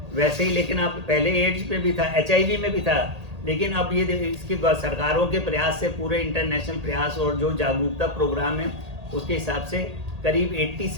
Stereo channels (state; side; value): late; left; 1.8 ms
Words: वैसे ही लेकिन अब पहले एड्स में भी था, HIV में भी था, लेकिन अब ये इसकी सरकारों के प्रयास से, पूरे इंटरनेशनल प्रयास और जो जागरूकता प्रोग्राम है, उसके हिसाब से करीब